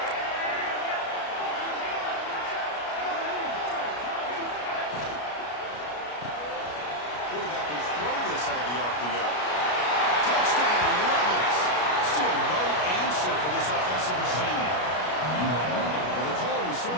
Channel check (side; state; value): right; late; 33 ms